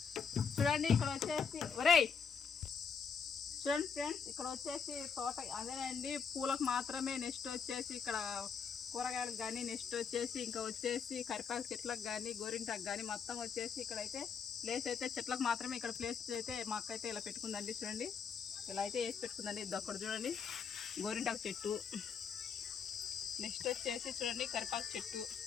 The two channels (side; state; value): right; quieter; 6.3 dB